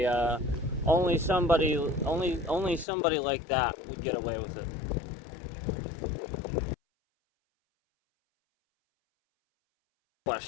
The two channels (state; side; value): drops out; right; at 2.9 s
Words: somebody like that would get away with it.